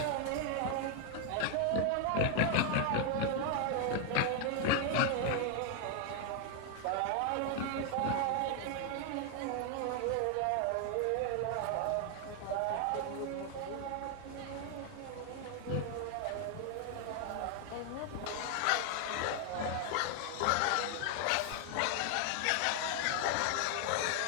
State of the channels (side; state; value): both; different; correlation 0.00